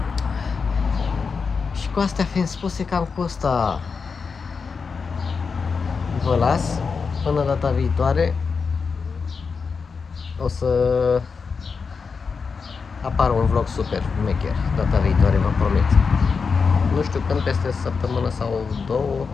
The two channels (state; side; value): quieter; right; 5.2 dB